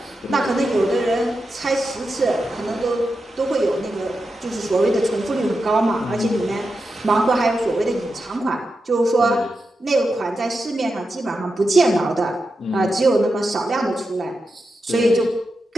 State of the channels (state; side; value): normal; both; correlation 0.89